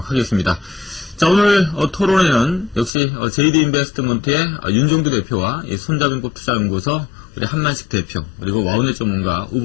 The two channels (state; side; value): drops out; right; at 2.9 s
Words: 하겠습니다. 자, 오늘 토론에는 역시 JD 인베스트먼트의 윤종두 대표와 이 손자병법 투자연구소 우리 한만식 대표, 그리고 와우넷 전문가